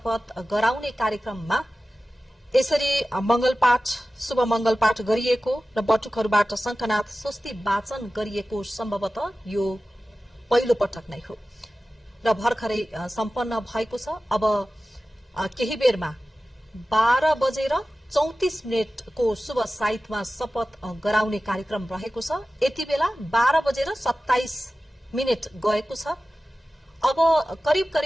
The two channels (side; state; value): both; normal; correlation 0.95